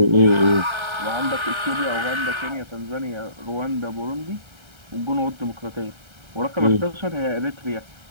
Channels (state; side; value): late; left; 1.3 ms